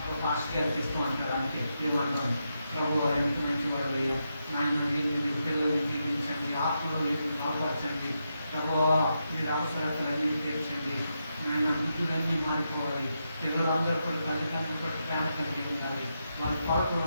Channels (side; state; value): both; inverted; correlation -0.84